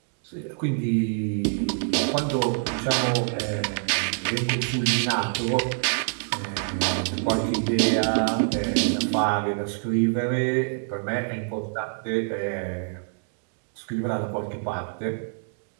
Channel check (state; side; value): silent; left; digital silence